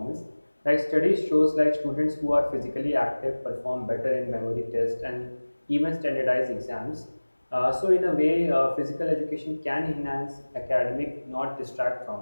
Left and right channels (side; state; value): both; inverted; correlation -1.00